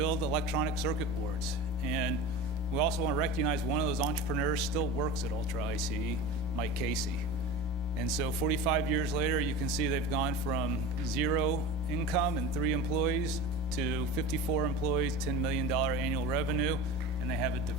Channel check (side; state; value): both; normal; correlation 0.31